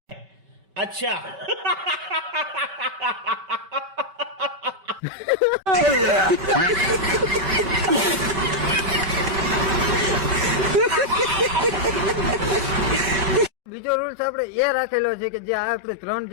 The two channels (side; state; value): left; late; 5.2 ms